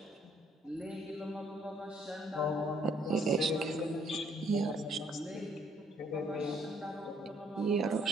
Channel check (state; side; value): normal; both; correlation 0.65